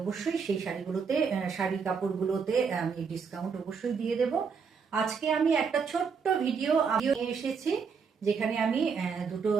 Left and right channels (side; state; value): left; quieter; 5.8 dB